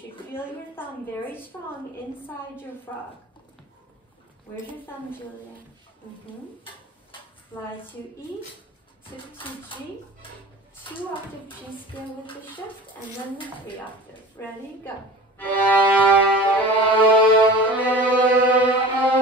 feel your thumb very strong inside your frog. Where's your thumb, Julia? Fly to E, tip to G, 2 octave G scale with the shift, and then the 3 octave. Ready, go.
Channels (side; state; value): both; normal; correlation 0.38